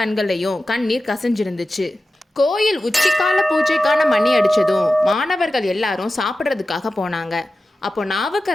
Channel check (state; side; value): normal; both; correlation 0.94